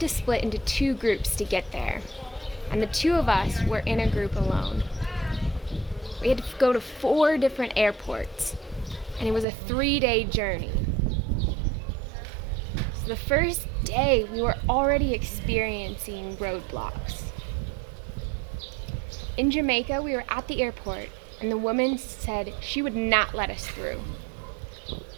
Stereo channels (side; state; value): left; drops out; at 9.5 s